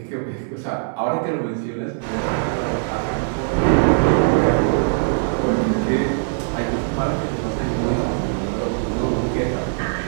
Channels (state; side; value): silent; left; 65 dB below the other